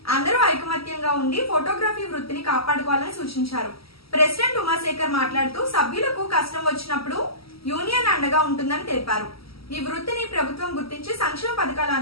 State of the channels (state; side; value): late; right; 0.75 ms